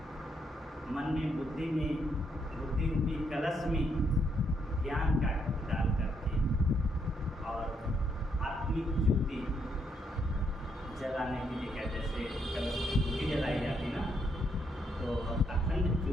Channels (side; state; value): both; normal; correlation 0.75